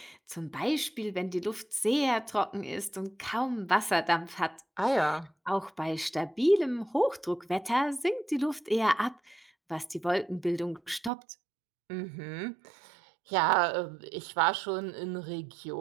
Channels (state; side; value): drops out; left; at 11.1 s